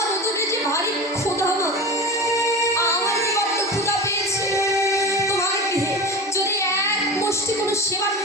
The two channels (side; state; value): both; normal; correlation 0.30